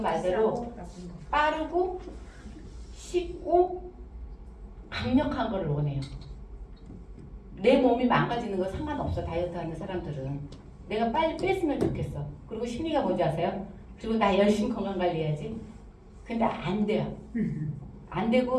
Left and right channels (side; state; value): both; identical; correlation 1.00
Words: 빠르고 쉽고 강력한 걸 원해요. 내 몸이 망가지는 거 상관없어. 다이어트 하는 사람들은 내가 빨리 뺐으면 좋겠어. 그리고 심리가 뭔지 아세요? 그리고 나 열심히 건강관리해야지. 근데 안 돼요. 안